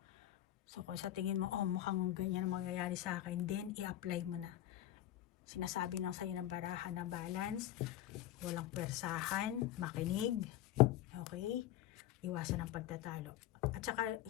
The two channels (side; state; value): right; quieter; 13.2 dB